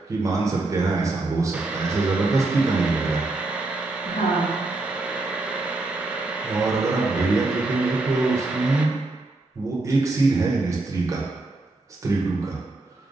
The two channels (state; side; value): quieter; left; 3.0 dB